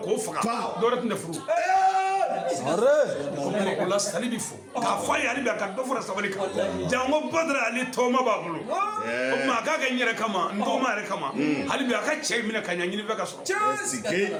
k'o faga dɔwɛrɛ tun tɛ furu o la Sali bi fo k'a fɔ a ye hali bi a ka dɔ fara sabali kan jango Badara ale tɔgɔma b'a bolo o tuma a k'a kɛ n yɛrɛ kama n dɔgɔma yɛrɛ kama hali bi a ka cɛ minɛ ka ɲɛ ɲini fɛ ka sɔrɔ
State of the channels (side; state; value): both; identical; correlation 1.00